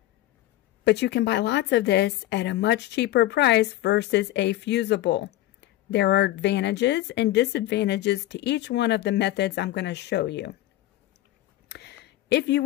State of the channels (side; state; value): right; quieter; 15.2 dB